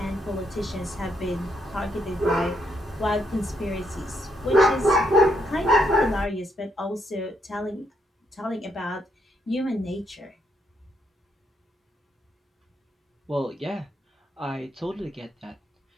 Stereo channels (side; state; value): both; normal; correlation 0.76